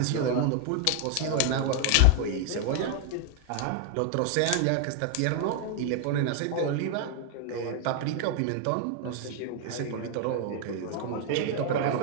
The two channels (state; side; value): different; both; correlation 0.00